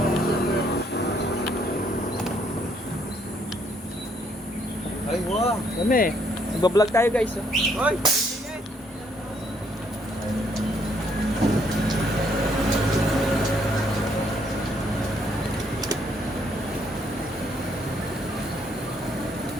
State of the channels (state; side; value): normal; both; correlation 0.69